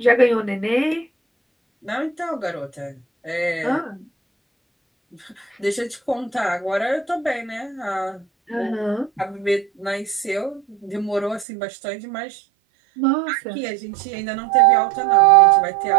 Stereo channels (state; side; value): drops out; left; at 11.5 s